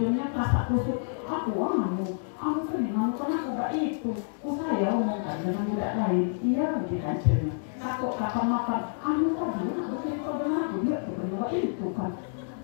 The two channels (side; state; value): right; silent; digital silence